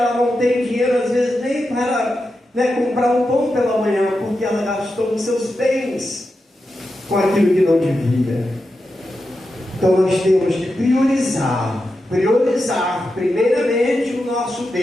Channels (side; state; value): both; normal; correlation 0.89